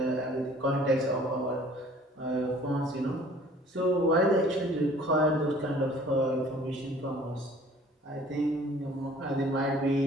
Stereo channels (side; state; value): both; normal; correlation 0.52